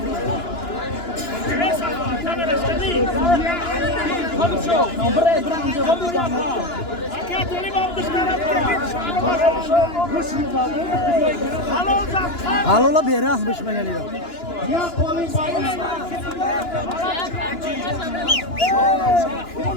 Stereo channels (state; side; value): late; right; 2.9 ms